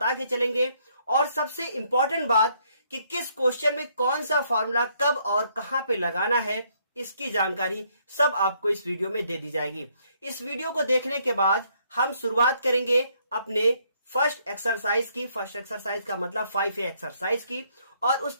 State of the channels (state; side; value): inverted; both; correlation -0.69